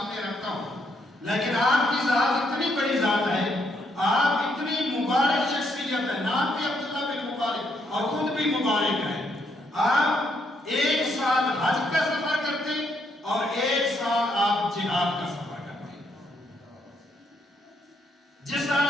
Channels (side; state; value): both; normal; correlation 0.74